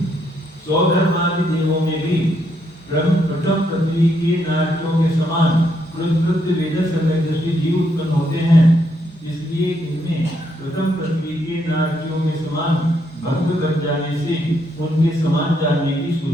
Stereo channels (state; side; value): normal; both; correlation 0.75